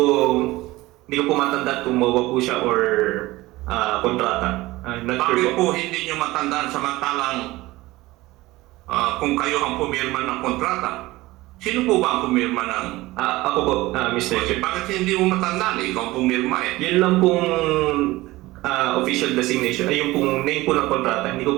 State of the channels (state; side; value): quieter; left; 19.1 dB